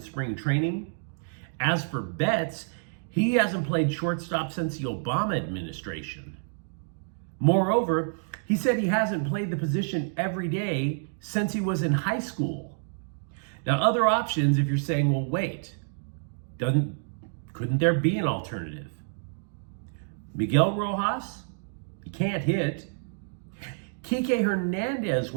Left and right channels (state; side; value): silent; left; digital silence